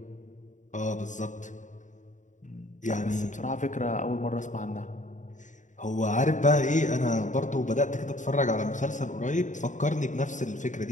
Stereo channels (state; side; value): late; right; 0.36 ms